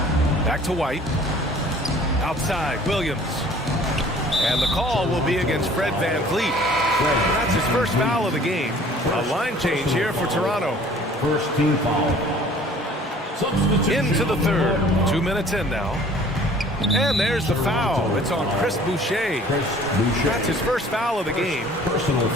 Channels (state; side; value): normal; both; correlation 0.51